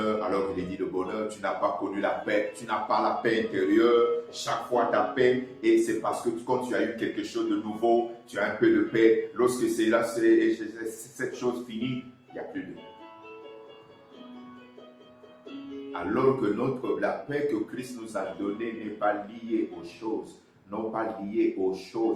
alors qu'il est dit le bonheur, tu n'as pas connu la paix, tu n'as pas la paix intérieure, chaque fois ta paix, et c'est parce que quand tu as eu quelque chose de nouveau, tu as un peu de paix, lorsque cette chose finie, il n'y a plus de paix. Alors que la paix que Christ nous a donnée n'est pas liée aux choses,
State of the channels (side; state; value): both; identical; correlation 1.00